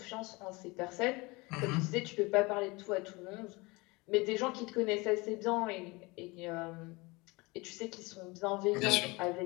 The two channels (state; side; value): quieter; right; 24.7 dB